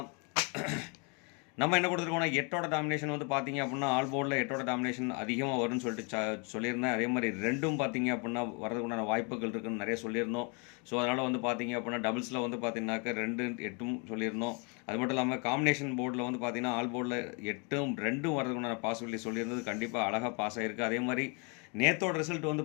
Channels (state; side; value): quieter; right; 34.2 dB